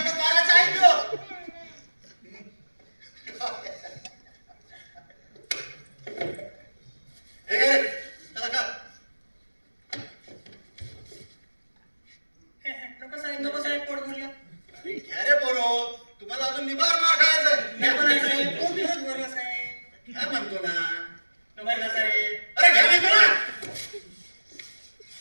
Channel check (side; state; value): both; inverted; correlation -1.00